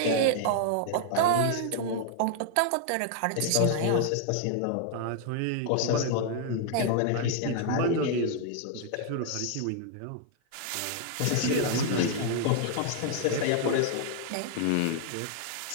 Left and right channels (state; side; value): different; both; correlation -0.01